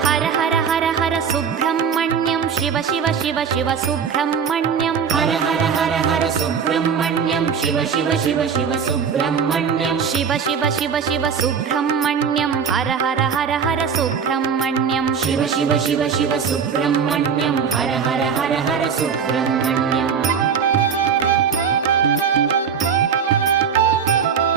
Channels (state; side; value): quieter; left; 6.8 dB